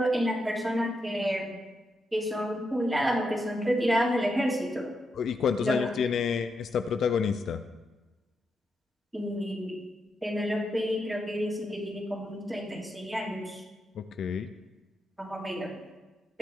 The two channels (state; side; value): normal; both; correlation 0.83